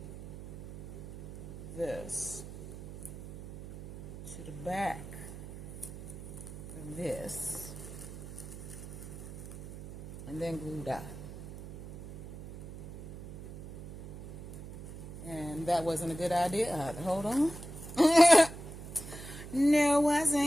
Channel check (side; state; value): right; noise; hum, 12 dB below the sound